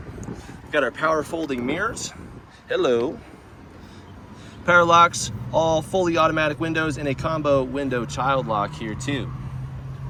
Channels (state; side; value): identical; both; correlation 1.00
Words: We've got our power folding mirrors. Hello. Power locks, all fully automatic windows, and a combo window child lock here too.